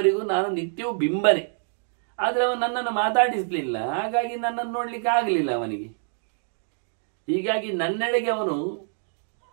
ನಾನು ನಿತ್ಯವೂ ಬಿಂಬನೆ. ಆದರೆ ಅವನು ನನ್ನನ್ನು ಮಾತಾಡಿಸಲಿಲ್ಲ, ಹಾಗಾಗಿ ನನ್ನನ್ನು ನೋಡ್ಲಿಕ್ಕೆ ಆಗಲಿಲ್ಲ ಅವನಿಗೆ. ಹೀಗಾಗಿ ನನ್ನೆಡೆಗೆ ಅವನು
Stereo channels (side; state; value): left; silent; digital silence